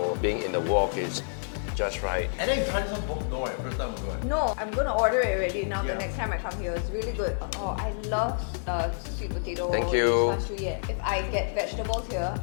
being in the wok is just right. And then you try some both? No, right? First time we'll go. No, I'm gonna order it already now. Yeah. The next time I come here, it's really good. Oh, I love sweet potato. Thank you. Fan shu ye. If I get vegetables here,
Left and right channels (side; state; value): right; silent; 59 dB below the other